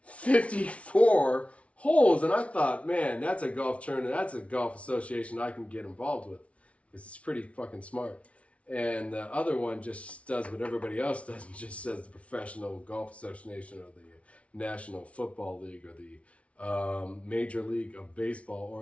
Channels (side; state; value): right; late; 0.063 ms